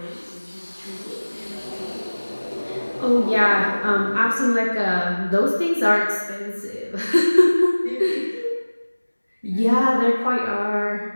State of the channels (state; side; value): inverted; both; correlation -1.00